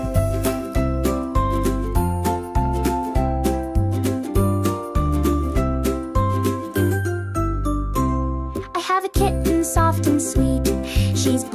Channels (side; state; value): both; identical; correlation 1.00